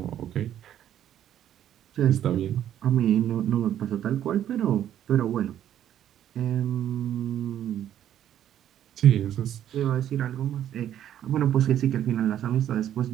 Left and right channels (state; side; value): quieter; left; 10.9 dB